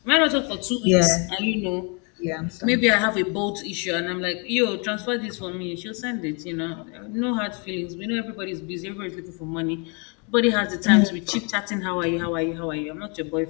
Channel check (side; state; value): right; quieter; 34.6 dB